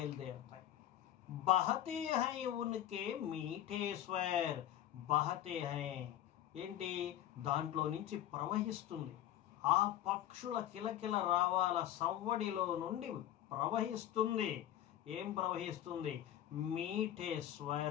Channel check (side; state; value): right; quieter; 12.0 dB